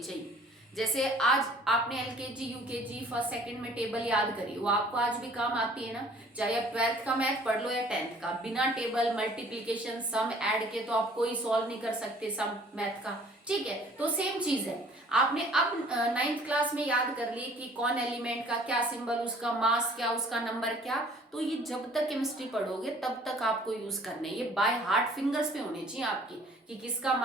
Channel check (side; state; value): both; normal; correlation 0.54